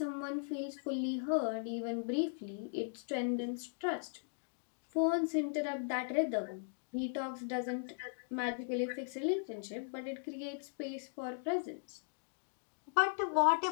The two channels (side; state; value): right; silent; digital silence